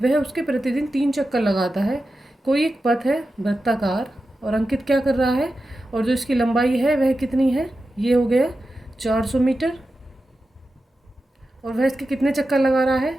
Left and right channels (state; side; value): normal; both; correlation 0.92